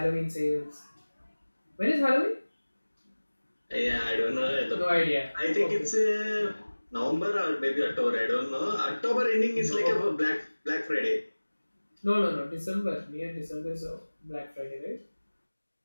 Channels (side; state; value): both; inverted; correlation -1.00